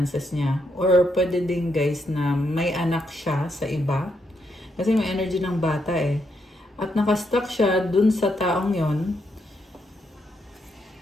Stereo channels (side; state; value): both; normal; correlation 0.79